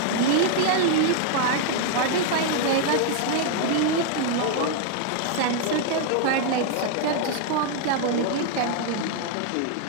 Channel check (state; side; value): different; both; correlation 0.00